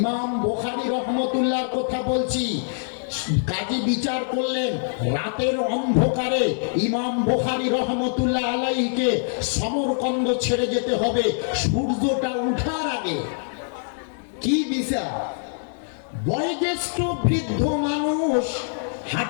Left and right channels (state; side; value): silent; right; 58 dB below the other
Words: বুখারী রহমতুল্লাহর কথা বলছি। কাজী বিচার করলেন, রাতের অন্ধকারে ইমাম বুখারী রহমতুল্লাহ আলাইহিকে সমরকন্দ ছেড়ে যেতে হবে সূর্যটা ওঠার আগে। কি বিচার! বয়োজ্যেষ্ঠ বৃদ্ধ মানুষ,